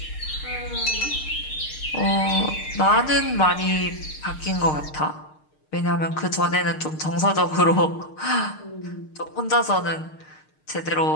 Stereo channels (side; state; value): right; late; 6.5 ms